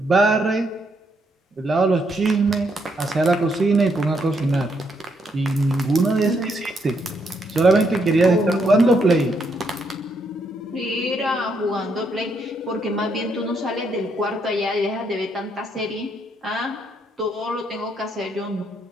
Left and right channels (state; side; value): normal; both; correlation 0.75